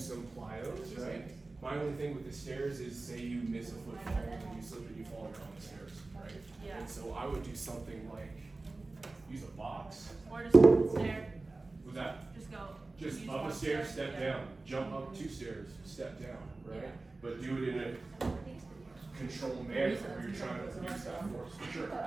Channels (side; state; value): left; quieter; 3.3 dB